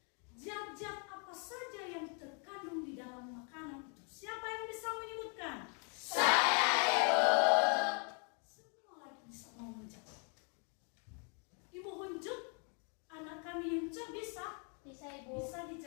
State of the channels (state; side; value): quieter; right; 39.2 dB